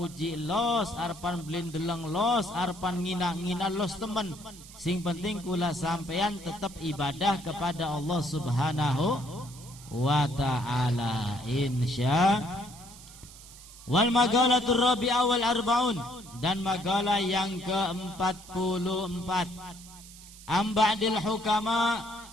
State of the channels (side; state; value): right; noise; hiss, 18 dB below the sound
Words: los, arepan belin deleng los, arepan ngina los temen. Sing penting kula sampean tetap ibadah kepada Allah Subhanahu wa ta'ala, insya. Wal magalatur rabi'ah wal arba'un, dan magalah yang ke-44. Amba'dil hukama,